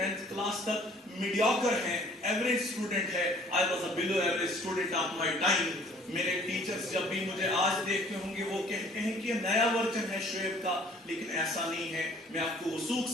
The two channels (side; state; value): both; normal; correlation 0.55